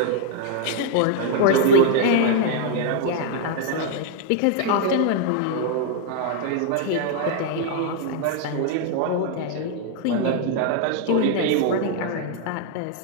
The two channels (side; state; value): both; different; correlation 0.00